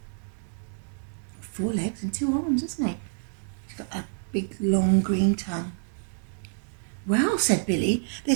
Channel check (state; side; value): silent; left; digital silence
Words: 4 legs and 2 arms, isn't he? He's got a big long green tongue. Well, said Billy,